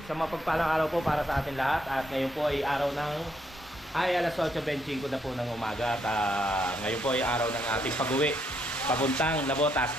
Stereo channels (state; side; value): normal; both; correlation 0.74